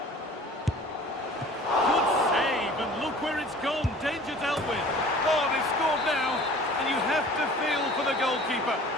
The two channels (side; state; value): both; normal; correlation 0.46